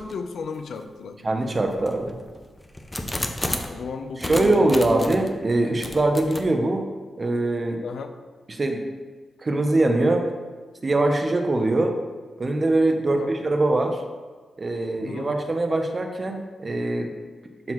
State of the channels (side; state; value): both; normal; correlation 0.93